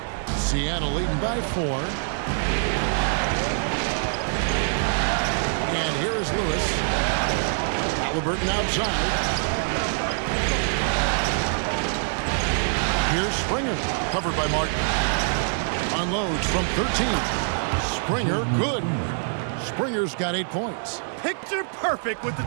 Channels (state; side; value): silent; left; digital silence